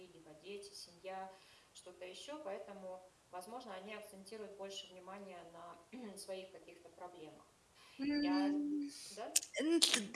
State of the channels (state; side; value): identical; both; correlation 1.00